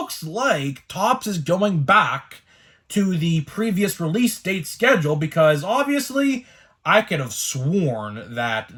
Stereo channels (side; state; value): both; identical; correlation 1.00